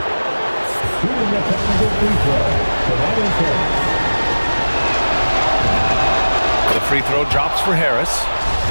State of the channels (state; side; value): inverted; both; correlation -1.00